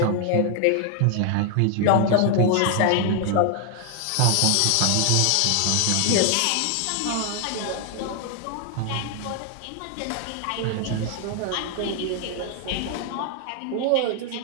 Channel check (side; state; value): both; different; correlation 0.00